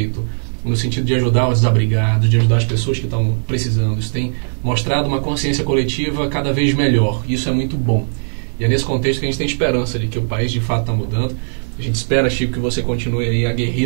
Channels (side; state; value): left; silent; 62 dB below the other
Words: no sentido de ajudar os desabrigados, de ajudar as pessoas que estão precisando. Isso tem mostrado uma consciência coletiva cada vez melhor. Isso é muito bom. E é nesse contexto que a gente tem esperança de que o país de fato está mudando. A gente espera, Chico, que você continue aí